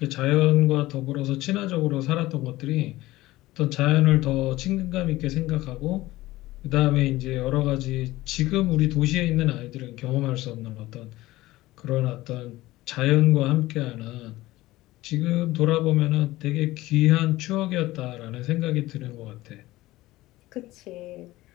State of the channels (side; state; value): right; quieter; 17.8 dB